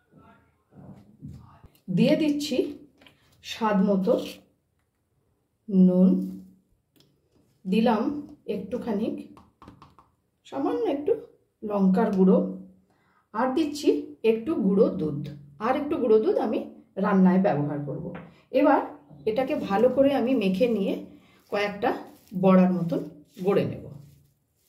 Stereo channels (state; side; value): identical; both; correlation 1.00